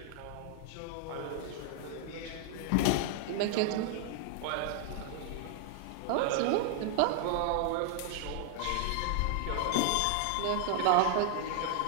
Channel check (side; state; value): both; different; correlation 0.00